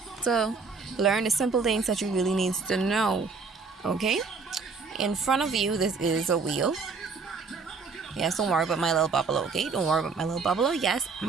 to learn the simple things that you really need to know. Okay? In front of you, this is a wheel. Yes, don't worry about my little bubbler, okay? Don't worry about my little bubbler. Yes,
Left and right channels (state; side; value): quieter; left; 4.7 dB